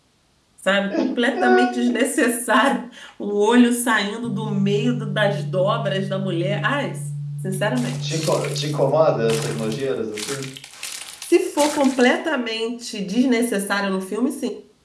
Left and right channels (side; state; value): both; identical; correlation 1.00